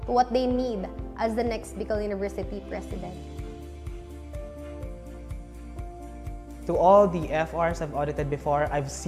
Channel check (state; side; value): identical; both; correlation 1.00